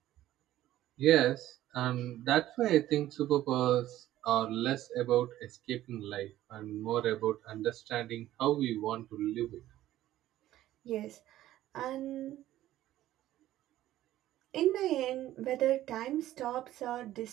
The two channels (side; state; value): left; quieter; 14.0 dB